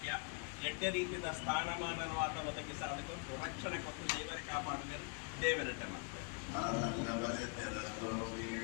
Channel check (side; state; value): right; quieter; 34.4 dB